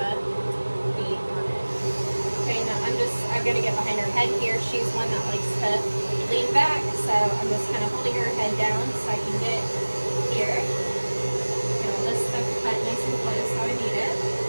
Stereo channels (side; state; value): both; inverted; correlation -1.00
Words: be on it. Okay, now I'm going to get behind her head here. She's one that likes to lean back, so I'm just kind of holding her head down so I can get here. Get all this stuff cut nice and close how I need it.